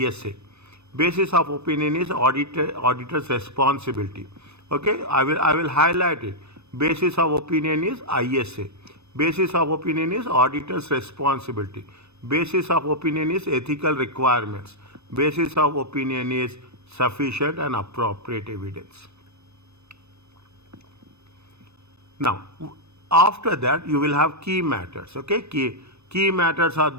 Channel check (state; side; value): late; left; 0.80 ms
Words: Basis of opinion is auditor's responsibility. Okay, I will highlight it. Basis of opinion is ISA. Basis of opinion is auditor's responsibility. Basis of opinion is ethical requirements. Basis of opinion is sufficient and appropriate evidence. Now, after that, you will have key matters. Okay, key matters are